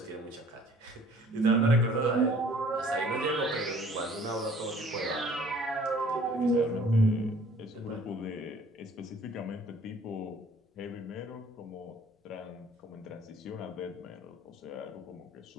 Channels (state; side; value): normal; both; correlation 0.54